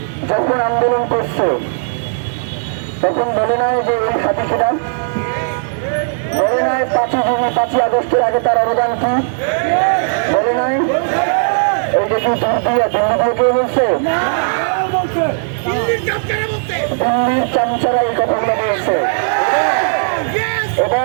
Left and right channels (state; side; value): silent; left; digital silence